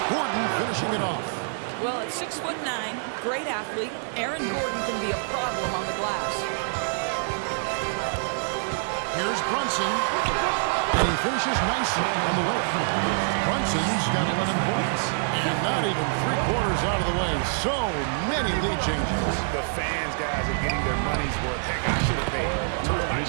Gordon finishing it off. Well, at 6'9", great athlete, Aaron Gordon can be a problem on the glass. Here's Brunson, and he finishes nicely on the way. Brunson's got 11 points, and not even 3/4 out of the way. So many lead changes. The fans, guys, are getting their money's worth. Heck, I should have paid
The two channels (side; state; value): left; silent; digital silence